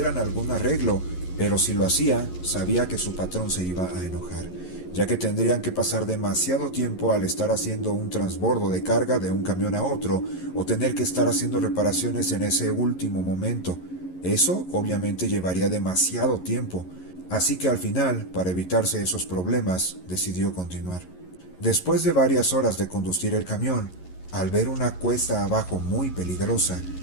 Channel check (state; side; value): late; right; 11 ms